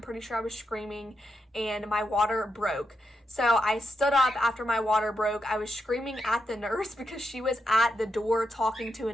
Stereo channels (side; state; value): both; normal; correlation 0.84